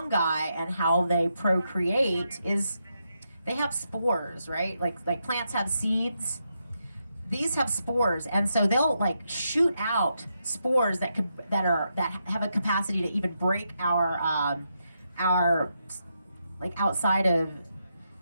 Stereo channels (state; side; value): inverted; both; correlation -0.83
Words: and how they procreate is they have spores, right? Like plants have seeds. These have spores, and so they'll like shoot out spores that have a capacity to even break our like outside of